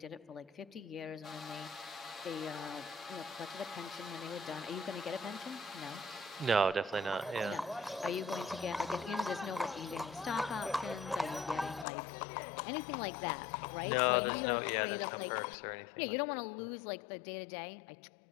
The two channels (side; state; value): right; drops out; at 11.9 s